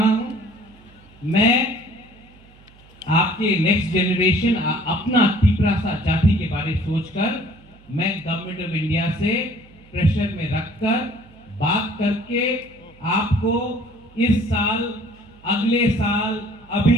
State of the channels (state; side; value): noise; right; hum, 26 dB below the sound